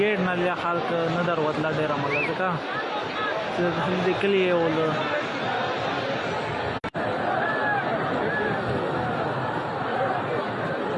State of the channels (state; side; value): identical; both; correlation 1.00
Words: نه لیا خلک نه دروازه ډیر عمل ځکه چې دې کلی ول